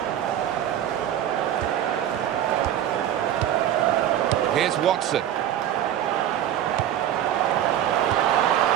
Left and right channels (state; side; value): quieter; left; 11.2 dB